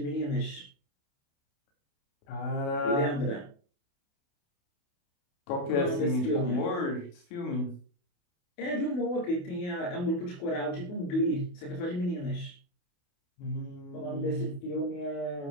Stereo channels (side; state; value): right; late; 28 ms